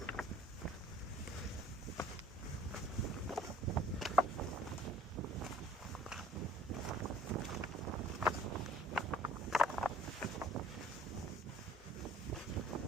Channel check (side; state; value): both; normal; correlation 0.52